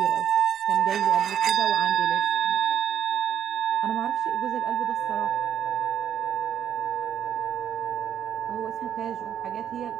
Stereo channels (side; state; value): left; quieter; 9.3 dB